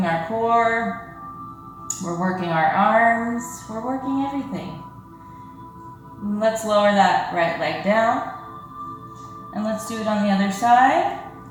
our core, we're working our arms, we're working everything. Let's lower that right leg down, and let's do it on the other side.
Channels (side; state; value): both; identical; correlation 1.00